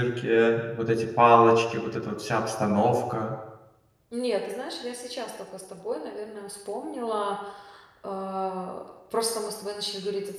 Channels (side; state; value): both; identical; correlation 1.00